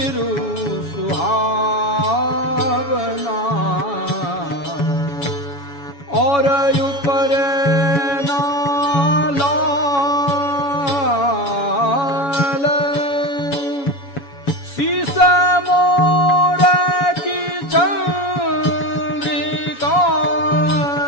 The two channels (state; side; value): late; right; 7.1 ms